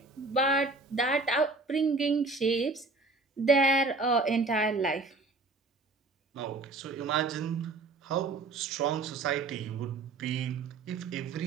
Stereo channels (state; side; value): quieter; left; 3.6 dB